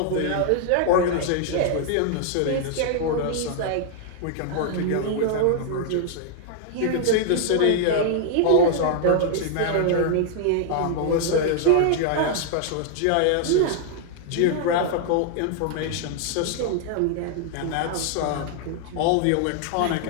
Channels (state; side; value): different; both; correlation -0.01